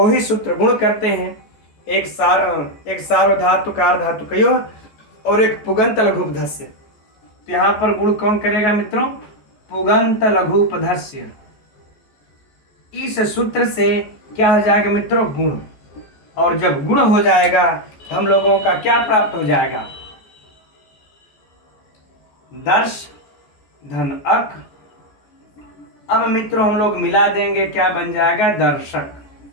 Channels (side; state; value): right; late; 14 ms